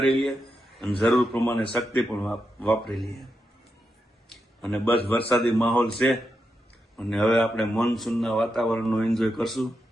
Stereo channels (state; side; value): normal; both; correlation 0.86